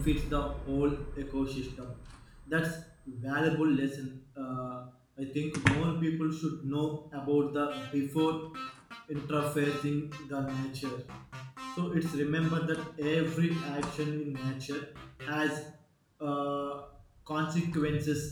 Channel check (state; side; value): identical; both; correlation 1.00